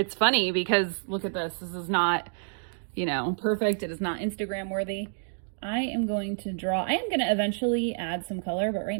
funny because look at this. This is not, you know, perfect. It is not Instagram worthy. I am going to draw. I am going to eventually add some color, but right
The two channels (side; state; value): left; silent; digital silence